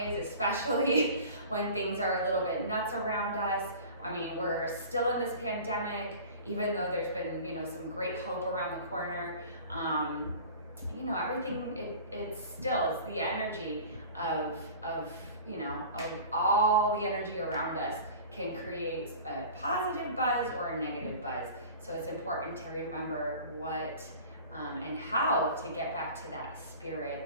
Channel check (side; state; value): both; inverted; correlation -0.41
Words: especially when things are a little bit nuts around us. I mean, we're still in this pandemic, even though there's been, some great hope around the corner. Everything, it's the energy of all the energy around us can create a positive buzz or a negative buzz. So it's important to remember what and how to get back to that